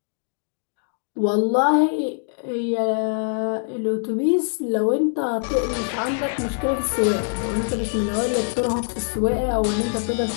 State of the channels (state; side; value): silent; right; digital silence